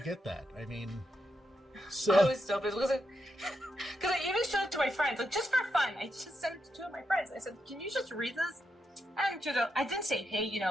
get that. I mean, so I was so pissed because I even showed it to my friends, like just for fun. I just sent it to two of my friends. I said, "Can you just read this?" And I didn't say, "Hey,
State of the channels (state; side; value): normal; both; correlation 0.84